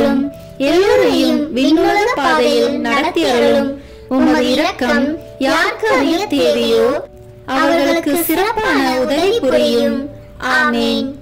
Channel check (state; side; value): identical; both; correlation 1.00